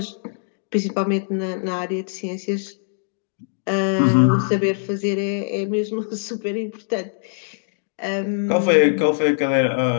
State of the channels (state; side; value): silent; right; digital silence